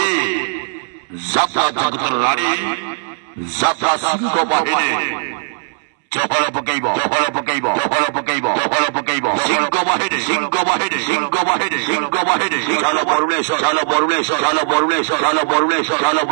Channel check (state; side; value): silent; left; 68 dB below the other